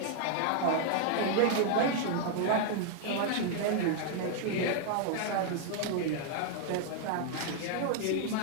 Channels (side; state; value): both; different; correlation 0.00